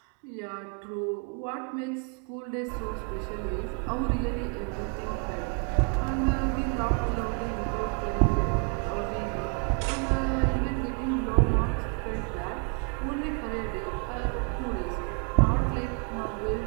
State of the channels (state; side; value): quieter; left; 36.5 dB